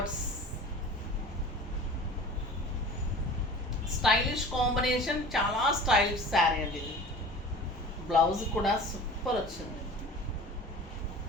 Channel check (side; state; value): both; normal; correlation 0.40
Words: స్టైలిష్ కాంబినేషన్, చాలా స్టైలిష్ శారీ అండి ఇది. బ్లౌజ్ కూడా సూపర్ వచ్చింది.